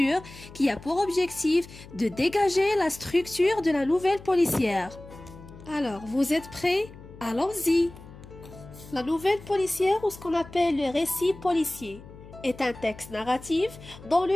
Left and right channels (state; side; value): noise; left; hum, 18 dB below the sound